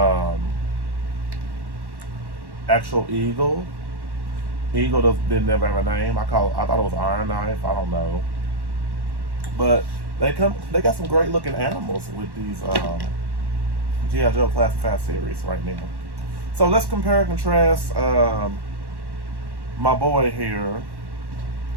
actual eagle. Eagle didn't never have a name. I thought it was Iron Knife. I don't know. But they got some great looking animals with these G.I. Joe Classified series right now. So let's compare and contrast my boy here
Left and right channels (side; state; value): left; late; 1.1 ms